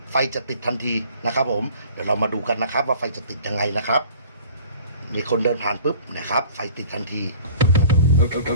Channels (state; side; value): inverted; both; correlation -0.47